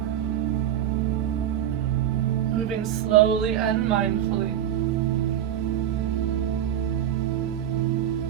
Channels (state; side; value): quieter; left; 10.5 dB